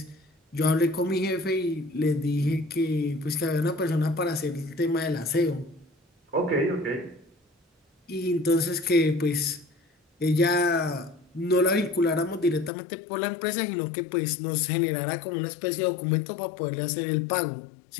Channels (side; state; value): right; drops out; at 12.7 s